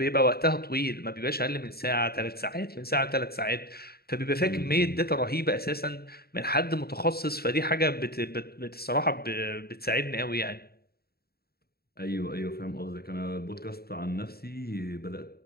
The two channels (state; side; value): late; right; 0.45 ms